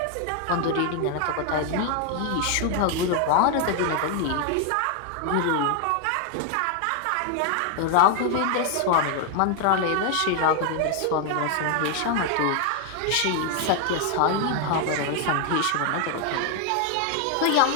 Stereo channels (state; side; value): different; both; correlation 0.00